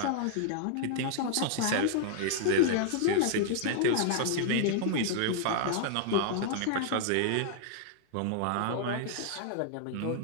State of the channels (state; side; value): different; both; correlation -0.01